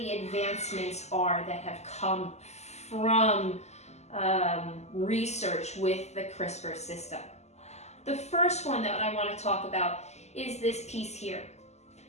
advancements are that have come from research with the Crispr system. The first one that I want to talk about is this piece here.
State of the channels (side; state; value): right; late; 0.33 ms